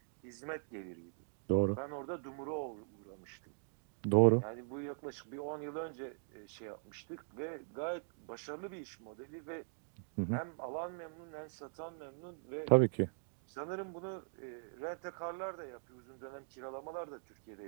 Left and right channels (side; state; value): left; silent; digital silence